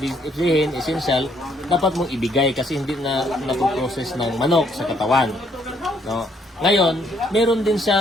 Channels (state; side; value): normal; both; correlation 0.68